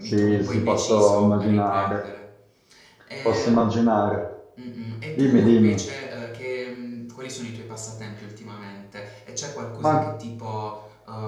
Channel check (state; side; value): identical; both; correlation 1.00